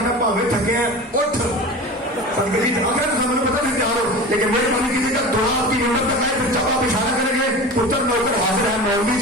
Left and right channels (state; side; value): normal; both; correlation 0.33